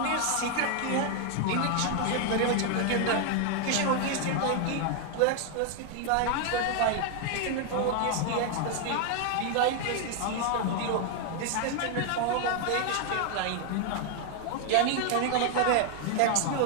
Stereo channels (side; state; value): both; different; correlation 0.00